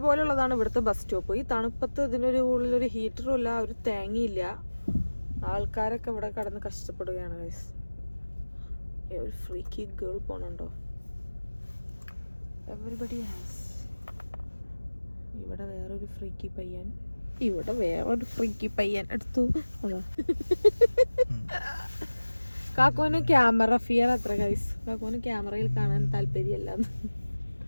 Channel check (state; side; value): inverted; both; correlation -1.00